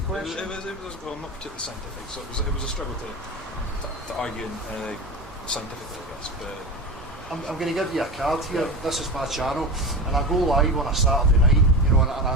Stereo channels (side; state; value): both; normal; correlation 0.25